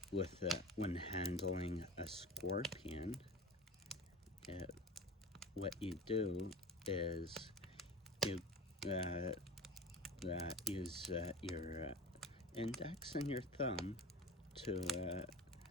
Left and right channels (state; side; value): normal; both; correlation 0.33